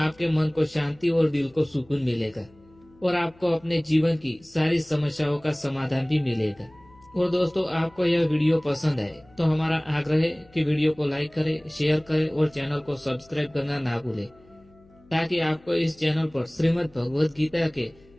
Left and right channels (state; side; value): noise; left; hum, 28 dB below the sound